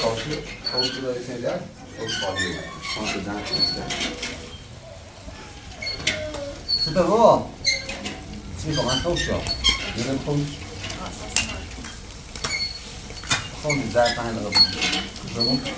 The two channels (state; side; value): identical; both; correlation 1.00